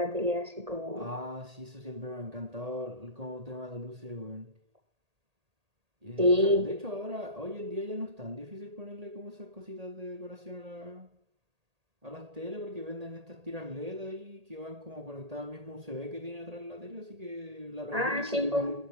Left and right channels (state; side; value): late; left; 1.8 ms